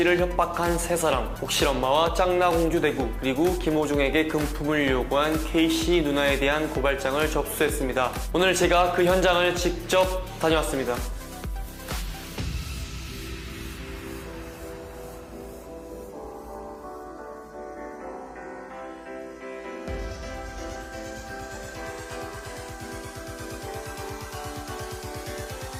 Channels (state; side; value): identical; both; correlation 1.00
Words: 협박한 세 사람, 옥실엄마와 짱나공주 대구, 그리고 김호중에게 금품을 요구한 K씨 누나에 대한 고발장을 접수했습니다. 오늘 제가 그 현장을 직접 다녀왔습니다.